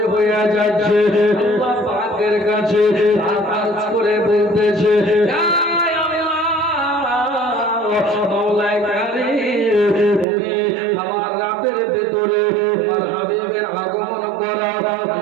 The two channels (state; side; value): drops out; left; at 10.2 s